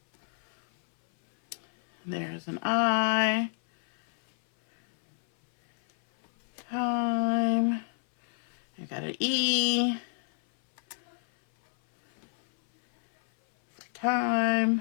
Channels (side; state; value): right; silent; 58 dB below the other